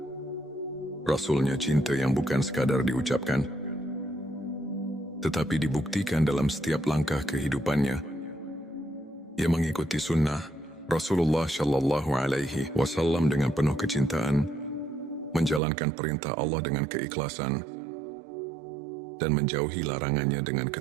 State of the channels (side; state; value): left; drops out; at 15.6 s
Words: Rasul-Nya. Cinta yang bukan sekadar diucapkan, tetapi dibuktikan dalam setiap langkah kehidupannya. Ia mengikuti sunnah Rasulullah Shallallahu Alaihi Wasallam dengan penuh kecintaan, menjalankan perintah Allah dengan keikhlasan, dan menjauhi larangannya dengan